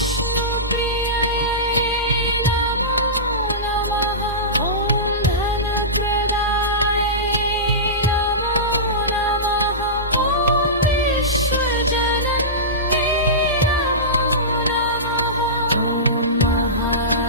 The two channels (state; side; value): normal; both; correlation -0.19